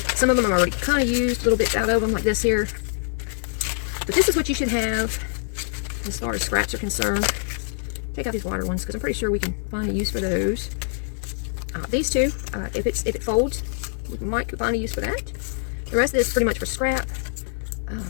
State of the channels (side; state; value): right; silent; digital silence